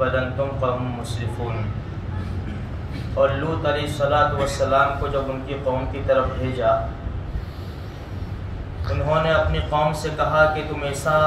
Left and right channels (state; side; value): identical; both; correlation 1.00